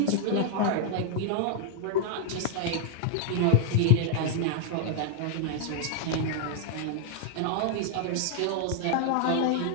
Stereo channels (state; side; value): different; both; correlation 0.00